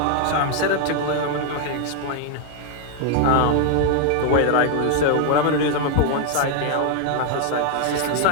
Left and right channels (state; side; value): different; both; correlation 0.00